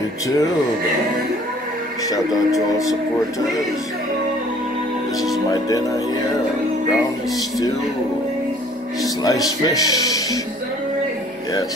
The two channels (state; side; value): noise; right; hum, 29 dB below the sound